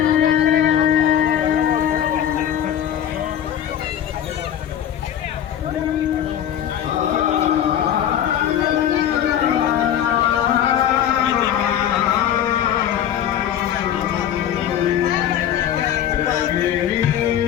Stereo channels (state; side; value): quieter; right; 10.2 dB